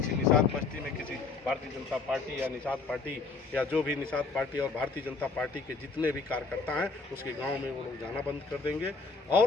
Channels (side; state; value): right; quieter; 4.2 dB